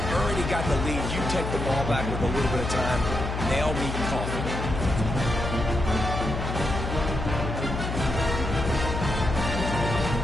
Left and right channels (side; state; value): left; noise; hum, 4 dB below the sound